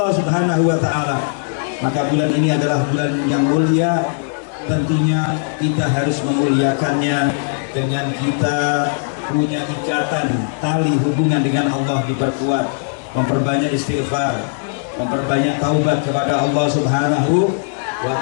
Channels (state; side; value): silent; right; digital silence